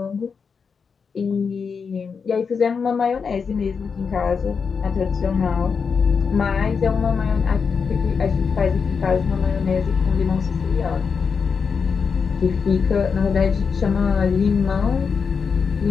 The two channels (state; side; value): quieter; right; 5.7 dB